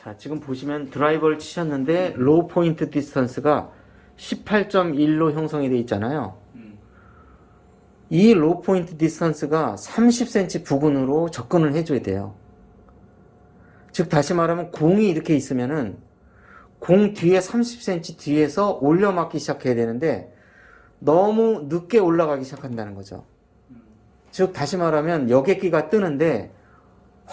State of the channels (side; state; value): both; identical; correlation 1.00